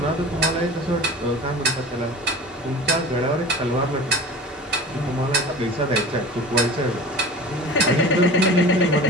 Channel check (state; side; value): normal; both; correlation 0.38